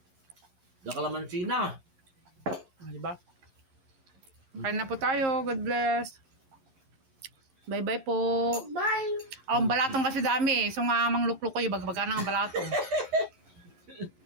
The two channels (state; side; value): late; left; 11 ms